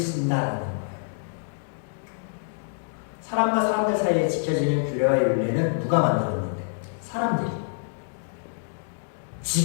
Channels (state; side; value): silent; right; digital silence